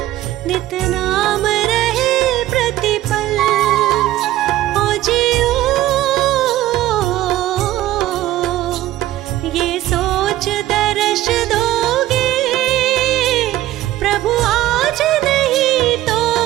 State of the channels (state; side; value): quieter; left; 14.8 dB